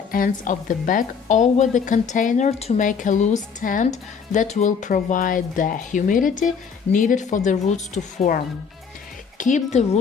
ends of the bag over the container to make a loose tent that will provide the humidity needed for the roots to form. Keep the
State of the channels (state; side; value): quieter; right; 6.2 dB